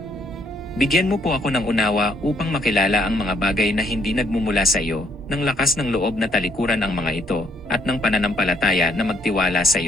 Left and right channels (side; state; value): both; normal; correlation 0.68